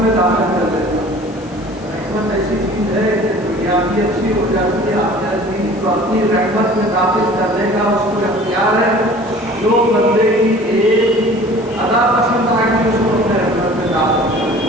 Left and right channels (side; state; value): left; noise; hiss, 25 dB below the sound